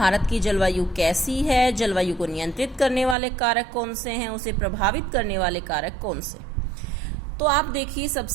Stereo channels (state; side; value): drops out; left; at 3.2 s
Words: की जलवायु कैसी है, जलवायु को नियंत्रित करने वाले कारक कौन से हैं, उसे प्रभावित करने वाले कारक कौन से। तो आप देखिए,